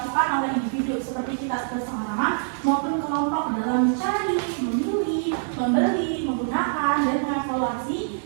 oleh individu seperti kita bersama-sama maupun kelompok dalam mencari, memilih, membeli, menggunakan, dan mengevaluasi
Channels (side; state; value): left; silent; digital silence